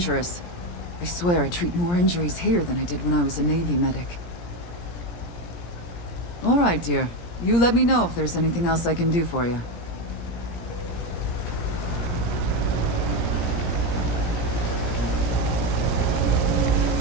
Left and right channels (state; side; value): late; right; 17 ms